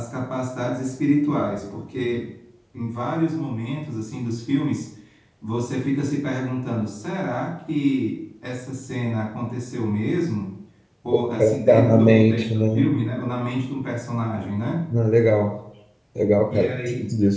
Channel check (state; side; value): identical; both; correlation 1.00